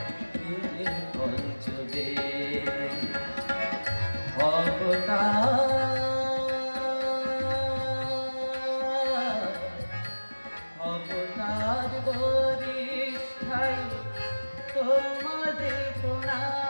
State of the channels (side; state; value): both; inverted; correlation -1.00